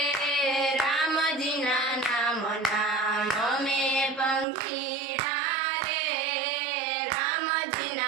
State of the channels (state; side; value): drops out; left; at 4.5 s